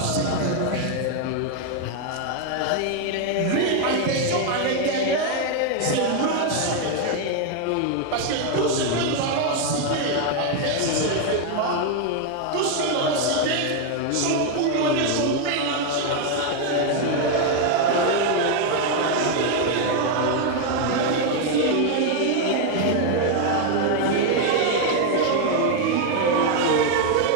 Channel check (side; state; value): both; different; correlation 0.01